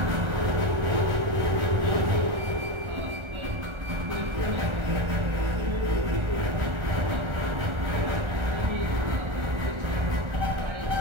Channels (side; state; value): left; late; 1.3 ms